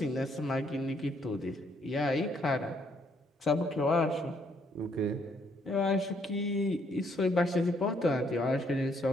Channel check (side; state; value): both; normal; correlation 0.70